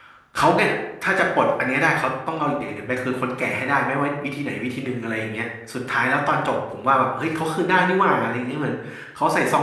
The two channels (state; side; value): identical; both; correlation 1.00